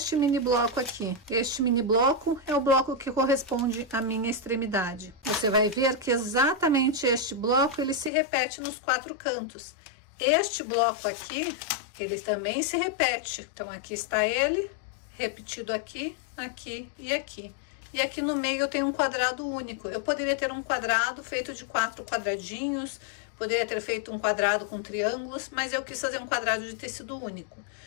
mini bloco aqui. Este mini bloco é o bloco que corresponde à minha extremidade. Você vai ver que exatamente este bloco, ele se repete nos 4 cantos. Este bloco aqui, ele também se repete. Então, aqui está ele, repetido aqui, aqui e aqui. E aqui no meio eu tenho um quadrado único. Eu poderia ter um quadrado feito de 4 quadradinhos, poderia ter feito um quadrado com triângulos, mas eu quis fazer um quadrado de tecido único.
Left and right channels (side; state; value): right; drops out; at 8.1 s